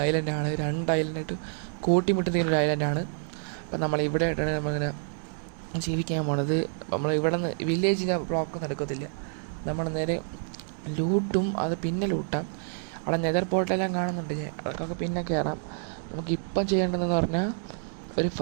ഐലൻഡാണ്, 2 ഐലൻഡായിട്ട് കൂട്ടിമുട്ടുന്ന ഒരു ഐലൻഡാണ്. അപ്പം നമ്മളിവിടെ ആയിട്ടാണ് നമ്മളിങ്ങനെ ജീവിക്കാൻ പോണത്. നമ്മൾ ഇവിടെ നിന്ന് വില്ലേജിൻ്റെ ബ്ലോക്കൊന്നും എടുക്കത്തില്ല, നമ്മൾ നേരെ ലൂട്ടും. അത് പിന്നെ ലൂട്ടാം. അവിടെ നെതർ പോർട്ടെല്ലാം കാണുന്നുണ്ട്, അതൊക്കെ പിന്നെ കയറാം. നമുക്കിപ്പം ചെയ്യേണ്ടതെന്ന് പറഞ്ഞാൽ ഒരു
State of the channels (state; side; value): silent; left; digital silence